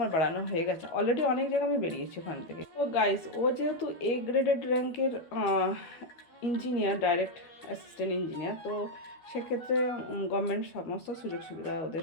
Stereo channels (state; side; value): late; right; 12 ms